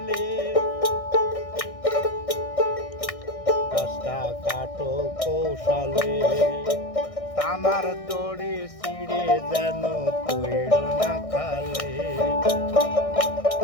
গাছটা কাটো কৌশলে। টানার দড়ি ছিঁড়ে যেন পড়িল না খালে।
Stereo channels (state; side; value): late; right; 1.6 ms